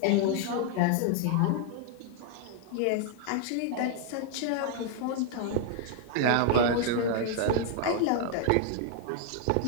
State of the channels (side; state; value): both; different; correlation 0.00